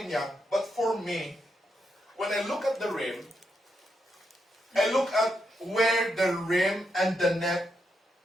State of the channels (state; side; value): normal; both; correlation 0.82